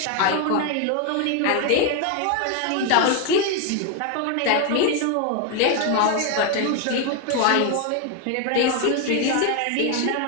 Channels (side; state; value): both; different; correlation 0.01